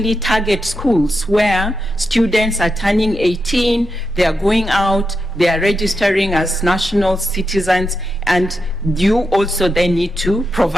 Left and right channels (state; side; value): normal; both; correlation 0.86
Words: target schools where students are turning 18, they are going out, they are registering as national citizens, and you also then need to